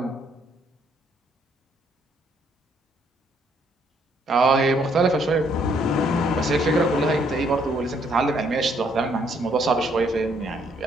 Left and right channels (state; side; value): normal; both; correlation 0.68